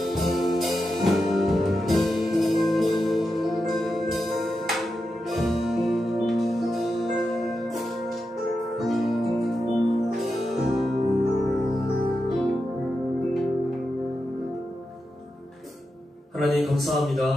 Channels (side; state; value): both; normal; correlation 0.88